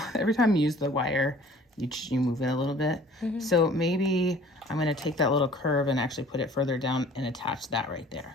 wire, you move it a little bit. So maybe I'm gonna take that little curve and actually put it further down and attach that right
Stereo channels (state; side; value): normal; both; correlation 0.50